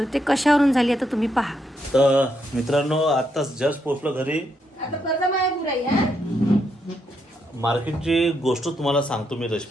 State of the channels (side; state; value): both; normal; correlation 0.78